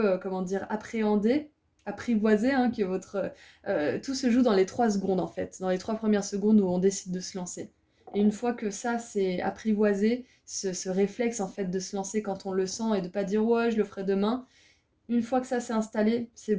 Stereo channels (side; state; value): both; identical; correlation 1.00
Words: comment dire, appréhendés, apprivoisés, hein, que tout se joue dans les 3 secondes en fait, dans les 3 premières secondes où on décide de se lancer. Et une fois que ça c'est apprivoisé, ce réflexe en fait de se lancer quand on le sent et de pas dire ouais je le ferai demain, une fois que ça s'est installé, c'est